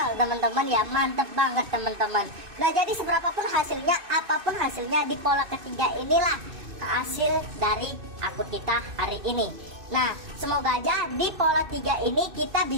teman-teman ya, mantap banget teman-teman. Nah jadi seberapapun hasilnya, apapun hasilnya, di pola ketiga inilah hasil dari akun kita hari ini. Nah semoga aja di pola 3 ini kita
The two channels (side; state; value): left; late; 2.6 ms